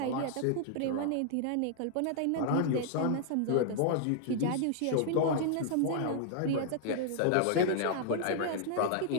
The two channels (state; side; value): different; both; correlation -0.01